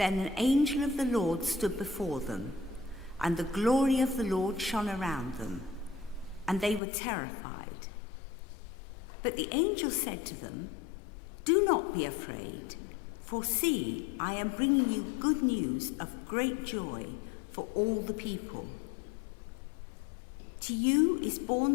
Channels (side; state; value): right; drops out; at 6.8 s